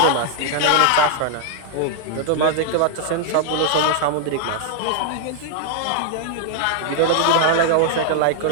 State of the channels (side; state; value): both; different; correlation 0.00